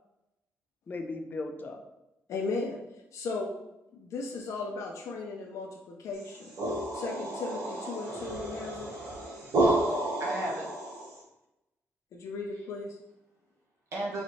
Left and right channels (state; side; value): normal; both; correlation 0.64